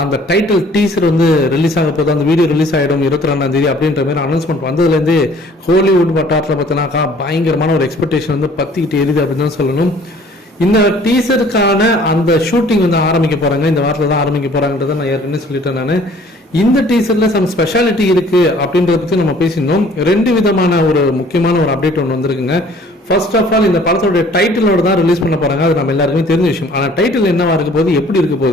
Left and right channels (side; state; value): both; normal; correlation 0.54